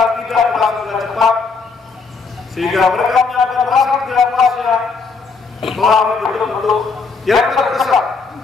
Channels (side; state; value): right; quieter; 4.6 dB